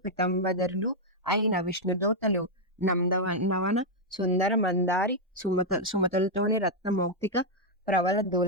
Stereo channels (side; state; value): both; normal; correlation -0.02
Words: పితంబదరులు అయిన విష్ణుదూతలు నవన సుందర మందారి సుమతులతోని రత్నమౌక్తిక ప్రవల